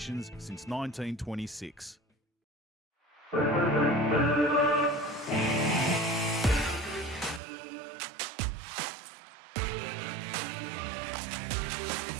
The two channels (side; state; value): left; drops out; at 7.4 s